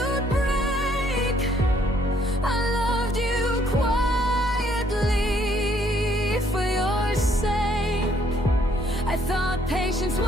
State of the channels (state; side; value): normal; both; correlation 0.66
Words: break. I loved you quietly for your sake. I thought patience